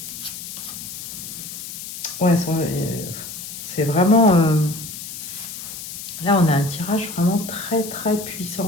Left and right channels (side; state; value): left; noise; hiss, 9 dB below the sound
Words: Ouais, c'est vraiment... Là, on a un tirage vraiment très, très